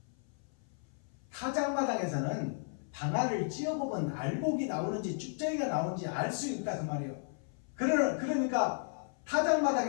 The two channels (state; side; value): silent; right; 55 dB below the other